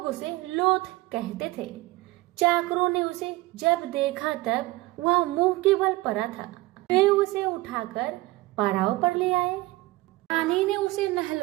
उसे लोथ कहते थे। चाकरों ने उसे जब देखा तब वह मुंह के बल पड़ा था। वे उसे उठाकर पड़ाव पर ले आए। रानी ने उसे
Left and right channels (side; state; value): left; quieter; 20.0 dB